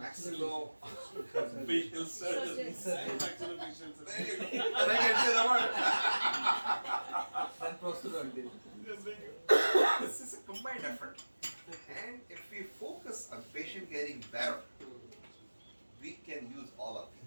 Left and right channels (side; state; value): both; inverted; correlation -1.00